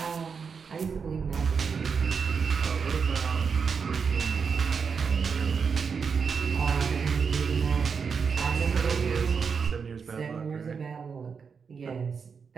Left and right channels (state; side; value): quieter; left; 5.9 dB